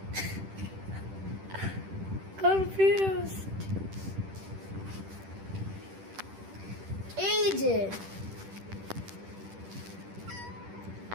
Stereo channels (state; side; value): late; left; 10 ms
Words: কনফিউজড। এই যে